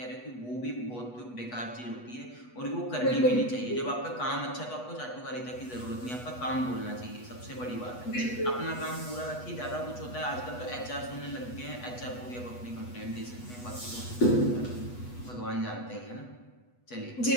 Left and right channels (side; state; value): right; late; 8.2 ms